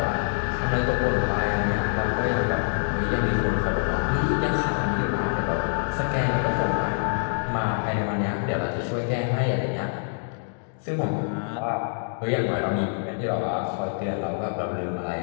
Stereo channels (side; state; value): right; silent; digital silence